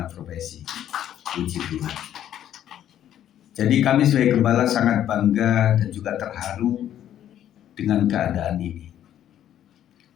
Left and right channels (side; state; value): right; quieter; 11.1 dB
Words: profesi. Puji Tuhan. Jadi kami sebagai gembala sangat bangga dan juga terharu dengan keadaan ini.